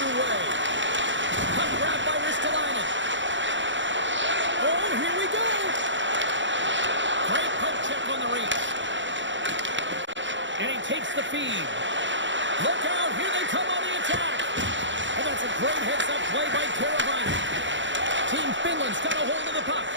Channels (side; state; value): left; late; 0.54 ms